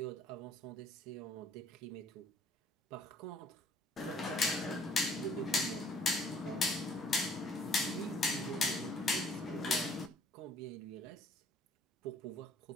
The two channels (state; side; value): normal; both; correlation 0.59